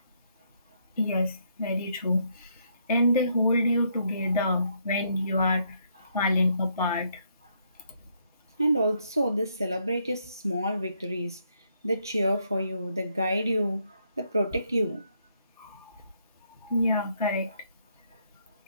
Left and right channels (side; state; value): both; inverted; correlation -0.73